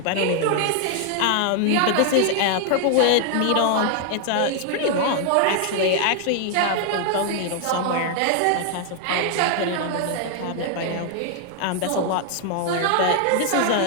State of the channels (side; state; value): both; different; correlation 0.00